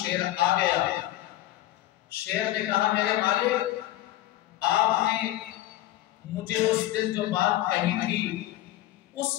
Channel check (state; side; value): quieter; right; 15.0 dB